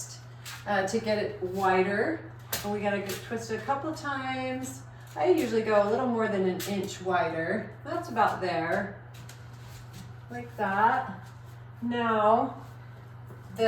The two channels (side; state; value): both; identical; correlation 1.00